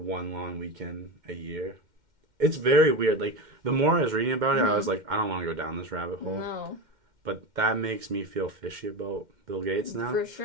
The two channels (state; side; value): late; left; 2.1 ms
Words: long weekend a year. It's very weird. Like, the more I was reading about it, I was like, I don't want to go down this rabbit hole. No. But that makes me feel fishy about Bill Gates now. For